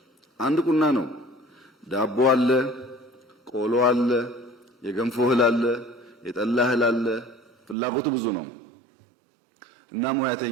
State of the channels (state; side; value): drops out; left; at 7.8 s